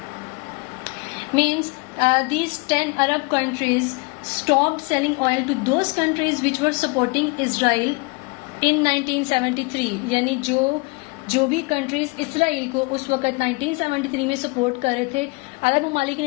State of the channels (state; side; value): quieter; right; 28.3 dB